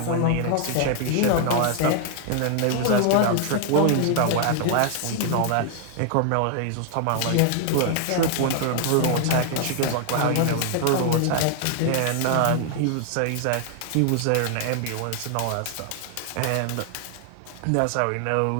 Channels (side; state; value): both; different; correlation 0.00